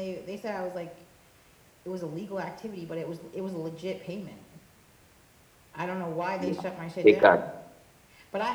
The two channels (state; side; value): identical; both; correlation 1.00